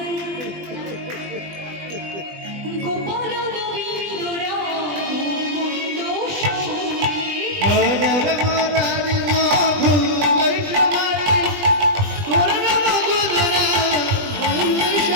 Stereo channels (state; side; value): late; left; 20 ms